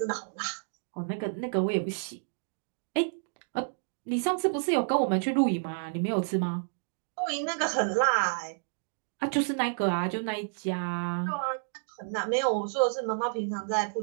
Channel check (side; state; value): left; silent; digital silence